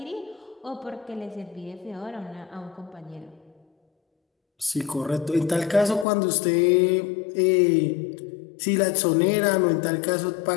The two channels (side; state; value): right; drops out; at 6.1 s